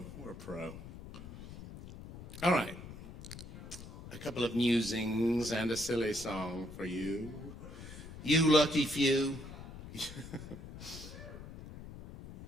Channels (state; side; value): noise; left; rumble, 13 dB below the sound